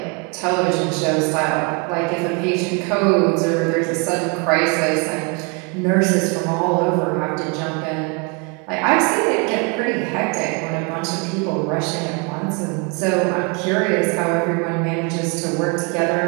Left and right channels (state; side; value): quieter; left; 32.4 dB